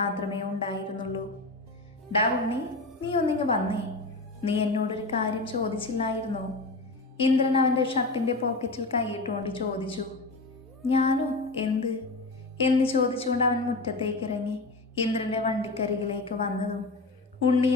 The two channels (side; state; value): right; quieter; 3.2 dB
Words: ഉണ്ടായിരുന്നുള്ളൂ. ഡാ ഉണ്ണി, നീ ഒന്നിങ്ങ് വന്നേ. നീ എന്നോടൊരു കാര്യം ചോദിച്ചില്ലായിരുന്നോ? ഇന്ദ്രൻ അവൻ്റെ ഷർട്ടിൻ്റെ പോക്കറ്റിൽ കൈയിട്ടുകൊണ്ട് ചോദിച്ചു. ഞാനോ? എന്ത് എന്ന് ചോദിച്ചുകൊണ്ട് അവൻ മുറ്റത്തേക്ക് ഇറങ്ങി. ഇന്ദ്രൻ്റെ വണ്ടിക്കരികിലേക്ക് വന്നതും